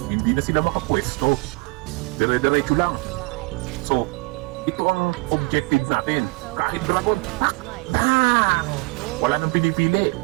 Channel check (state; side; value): quieter; left; 26.9 dB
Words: hindi na sila makapwesto. Dire-diretso lang. So, ito ang objective natin. Kahit dragon, tak! Bang! Wala nang pinipili,